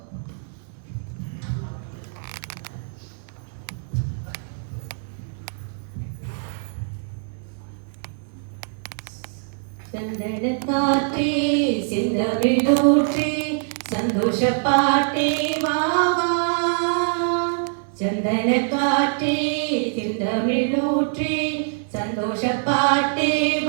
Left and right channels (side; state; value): left; silent; digital silence